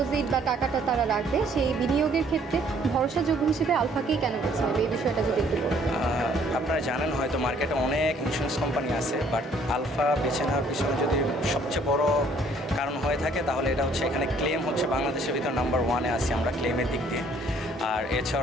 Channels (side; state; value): both; normal; correlation 0.61